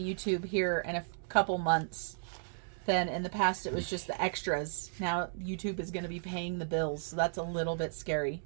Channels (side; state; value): left; silent; digital silence